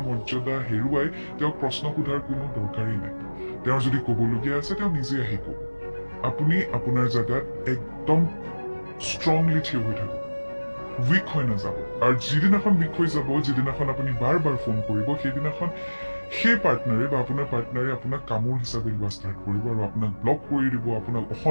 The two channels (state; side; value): inverted; both; correlation -1.00